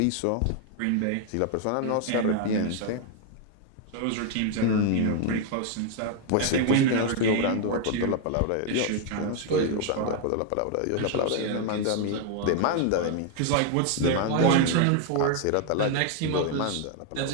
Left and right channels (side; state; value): both; different; correlation 0.01